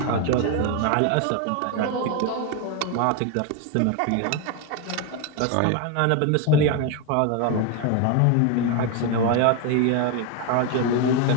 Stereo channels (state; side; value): different; both; correlation 0.01